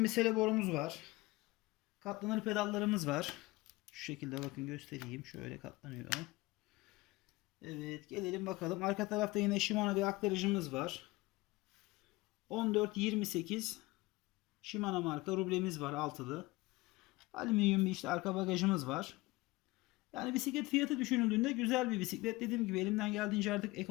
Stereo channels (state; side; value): quieter; right; 21.4 dB